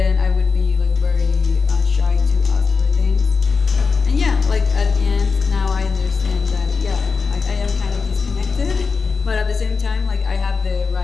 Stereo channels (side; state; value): right; quieter; 4.9 dB